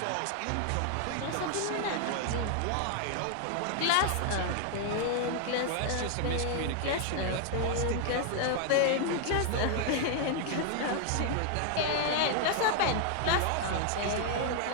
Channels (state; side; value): different; both; correlation 0.00